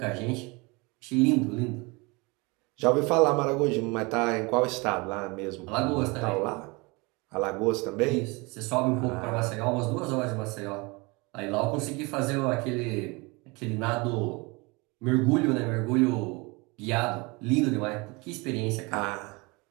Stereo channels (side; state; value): left; quieter; 26.7 dB